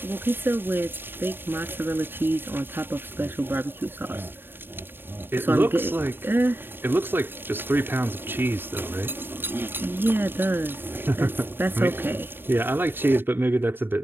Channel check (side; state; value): left; late; 0.10 ms